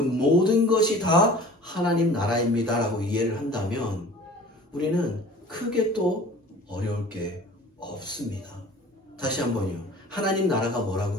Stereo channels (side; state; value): both; normal; correlation 0.45